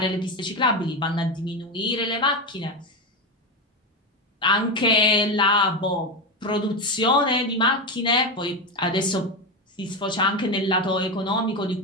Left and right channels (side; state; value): both; normal; correlation 0.15